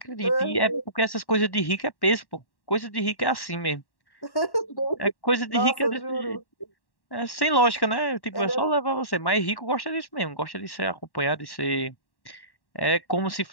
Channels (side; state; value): right; late; 1.1 ms